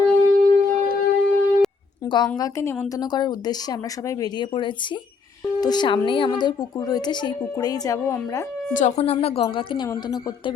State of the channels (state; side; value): quieter; right; 4.8 dB